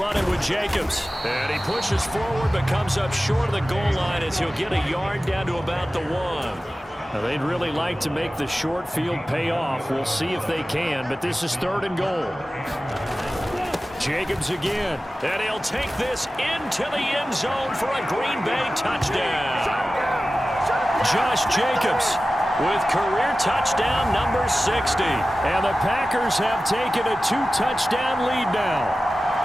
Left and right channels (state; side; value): normal; both; correlation 0.95